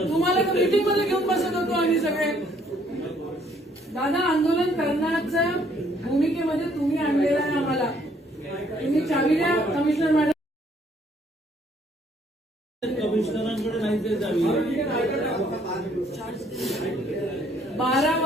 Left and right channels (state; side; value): normal; both; correlation 0.65